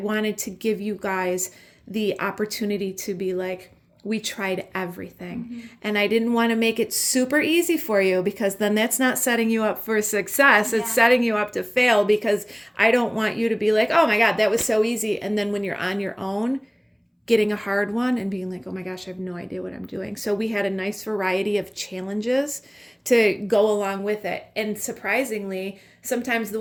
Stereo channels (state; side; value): identical; both; correlation 1.00